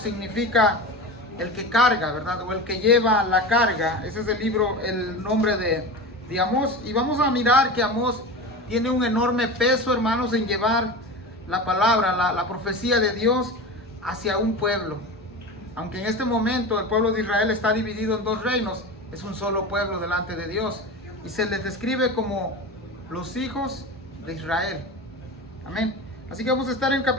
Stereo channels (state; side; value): normal; both; correlation 0.28